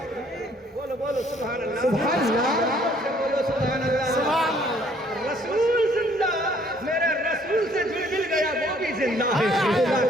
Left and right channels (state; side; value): normal; both; correlation 0.61